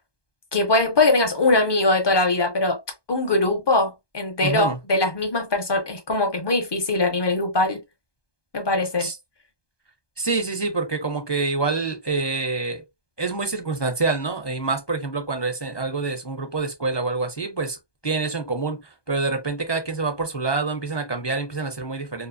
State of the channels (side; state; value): right; late; 1.2 ms